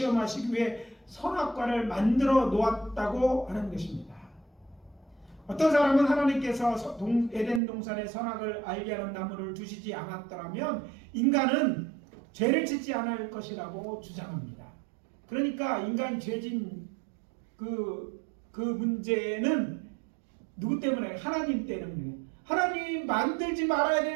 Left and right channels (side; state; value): left; drops out; at 7.6 s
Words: 위해 선악과를 만들어 놓았다고 하는 것입니다. 어떤 사람은 하나님께서 에덴 동산의 선악을 알게 하는 나무를 두시지 않았더라면 인간은 죄를 짓지 않을 것이라고 주장합니다. 그러니까 인간 죄진 그 문제는 누구 때문에? 하나님 때문에. 하나님 만들지 말아야